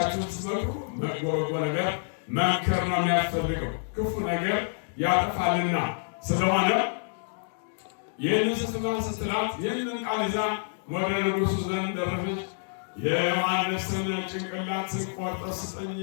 ስትመክሩ መጥፎ ነገር መምከር ነው የሚያስፈልገው፣ ክፉ ነገር ያጠፋልና። ስለሆነ ይህንን ስትላት ይህንን ቃል ይዛ ወደ ንጉሡ ዘንድ ደረሰች። የዮሐንስን ጭንቅላት ቆርጠህ ስጠኝ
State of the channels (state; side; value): silent; right; digital silence